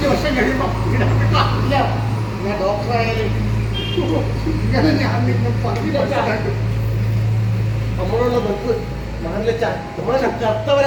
വർഷം കഴിയുമ്പോ ഇല്ല, ഞാൻ ഡോക്ടറായാലും ഇങ്ങനെ ഞാൻ നിങ്ങൾ പറഞ്ഞു മനസ്സിലാക്കും. നമ്മളുള്ള ബസ് നാട്ടിലെച്ചാ നമ്മളെ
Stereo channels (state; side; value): identical; both; correlation 1.00